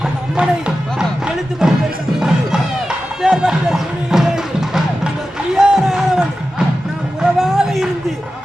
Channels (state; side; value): normal; both; correlation 0.93